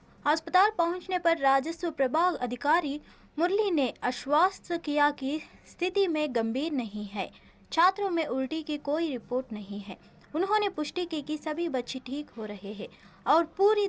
अस्पताल पहुंचने पर राजस्व प्रभाग अधिकारी मुरली ने आश्वस्त किया कि स्थिति में गंभीर नहीं है। छात्रों में उल्टी की कोई रिपोर्ट नहीं है। उन्होंने पुष्टि की कि सभी बच्चे ठीक हो रहे हैं और पूरी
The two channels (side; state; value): both; identical; correlation 1.00